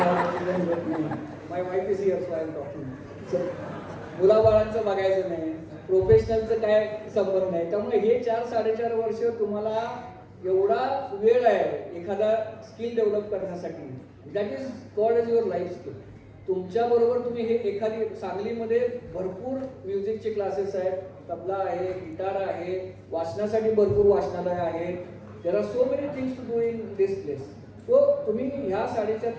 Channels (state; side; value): identical; both; correlation 1.00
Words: my wife is here so I am talking. मुलाबाळांचं बघायचं नाही, प्रोफेशनलचं काय संबंध नाही. त्यामुळे हे 4-4.5 वर्ष तुम्हाला एवढा वेळ आहे एखादा स्किल डेव्हलप करण्यासाठी. That is called as your life skill. तुमच्याबरोबर तुम्ही हे एखादी, सांगलीमध्ये भरपूर म्युझिकचे क्लासेस आहेत, तबला आहे, गिटार आहे, वाचनासाठी भरपूर वाचनालय आहेत, there are so many things to do in this place. So तुम्ही ह्या 4.5